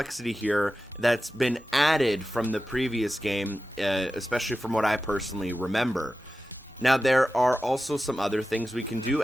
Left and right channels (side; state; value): both; normal; correlation 0.94